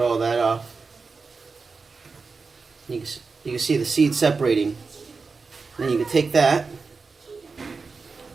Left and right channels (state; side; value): quieter; left; 4.5 dB